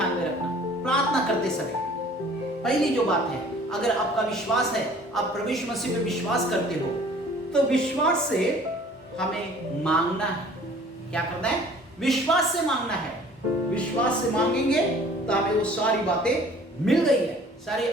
में रखना प्रार्थना करते समय। पहली जो बात है, अगर आपका विश्वास है, आप प्रभु यीशु मसीह पे विश्वास करते हो, तो विश्वास से हमें मांगना है। क्या करना है? विश्वास से मांगना है। विश्वास से मांगेंगे तो हमें वो सारी बातें मिल गई है, सारे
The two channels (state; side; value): normal; both; correlation 0.51